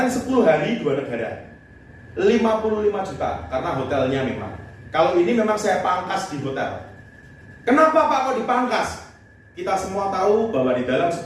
10 hari 2 negara, 55 juta karena hotelnya memang. Kalau ini memang saya pangkas di hotel. Kenapa Pak kok dipangkas? Kita semua tahu bahwa di dalam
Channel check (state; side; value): identical; both; correlation 1.00